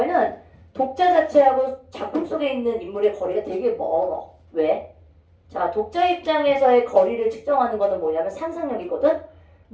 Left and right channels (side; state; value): both; identical; correlation 1.00